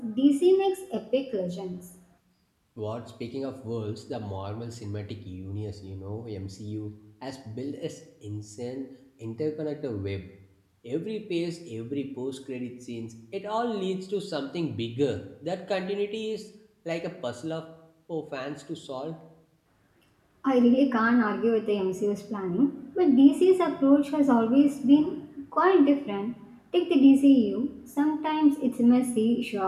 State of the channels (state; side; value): identical; both; correlation 1.00